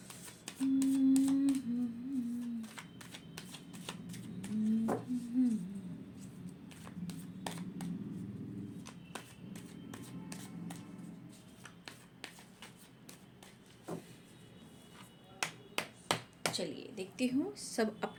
चलिए देखती हूँ, सब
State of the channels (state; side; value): identical; both; correlation 1.00